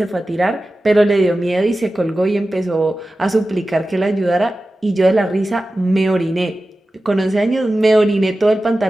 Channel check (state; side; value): normal; both; correlation 0.95